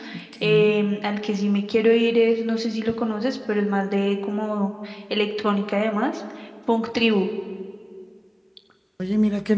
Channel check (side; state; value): both; identical; correlation 1.00